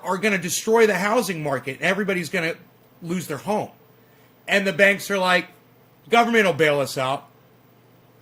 to destroy the housing market, and everybody's going to lose their home. And the banks are like, government will bail us out.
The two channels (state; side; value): identical; both; correlation 1.00